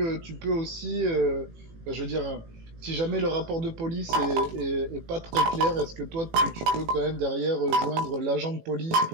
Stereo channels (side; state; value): left; late; 18 ms